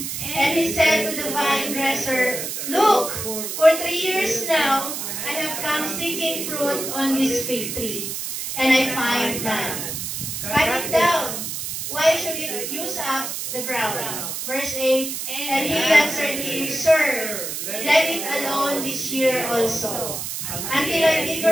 and he said to the vine dresser, look, for 3 years now I have come seeking fruit on this fig tree, and I find none. Cut it down. Why should it use up the ground? Verse 8, and he answered him, Sir, let it alone this year also, until I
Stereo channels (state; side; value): noise; right; hiss, 5 dB below the sound